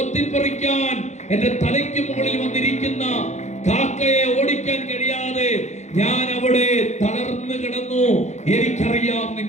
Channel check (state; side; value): late; right; 0.33 ms